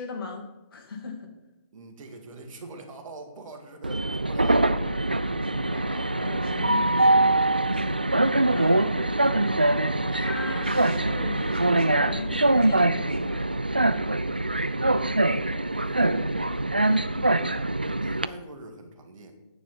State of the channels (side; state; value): both; inverted; correlation -0.81